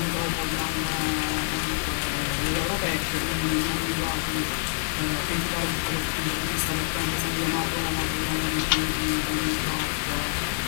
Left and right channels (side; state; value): right; silent; digital silence